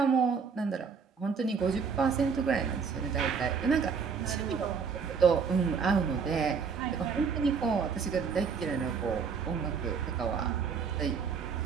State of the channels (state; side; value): quieter; left; 5.9 dB